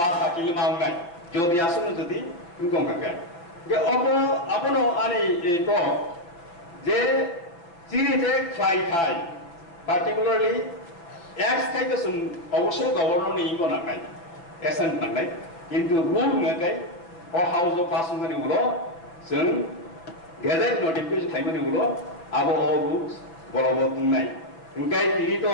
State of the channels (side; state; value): right; late; 5.9 ms